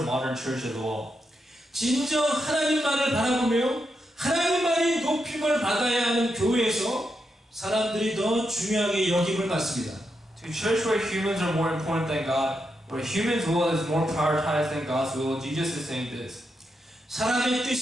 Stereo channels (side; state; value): both; normal; correlation 0.84